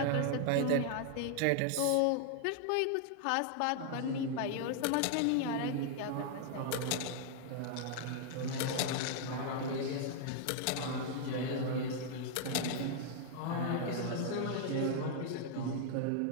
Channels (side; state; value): both; different; correlation 0.00